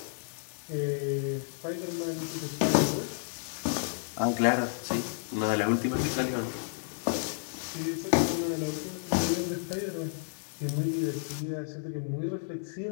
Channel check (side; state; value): right; silent; 57 dB below the other